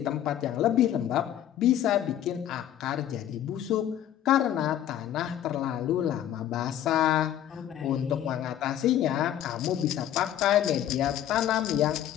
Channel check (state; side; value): quieter; right; 11.2 dB